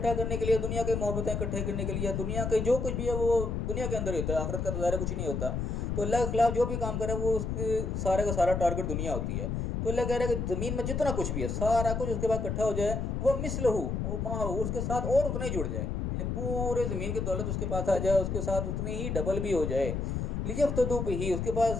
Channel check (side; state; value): left; noise; rumble, 2 dB below the sound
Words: کرنے کے لیے، دنیا کے محبتیں اکٹھے کرنے کے لیے، دنیا کے جو کچھ بھی ہے وہ دنیا کے اندر ہی ہوتا ہے، آخرت کا تو ظاہر کچھ نہیں ہوتا، تو اللہ کے خلاف جو بھی کام کرے وہ اس کی سارے کا سارا ٹارگٹ دنیا ہوتی ہے۔ تو اللہ کہہ رہا ہے کہ زمین میں جتنا کچھ بھی ہے سارا کچھ اس کے بعد اکٹھا ہو جائے، وہ مثلہ ما ہو، اس کے ساتھ اور اتنا ہی جڑ جائے، یعنی پورے زمین کی دولت اس کے پاس آ جائے، اس کے ساتھ اتنی ہی ڈبل بھی ہو جائے، لیفتدوا بہ، اس کے